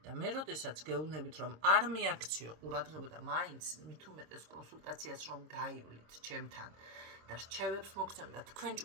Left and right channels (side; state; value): left; late; 26 ms